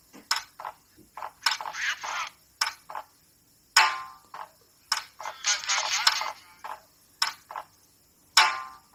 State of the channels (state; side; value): identical; both; correlation 1.00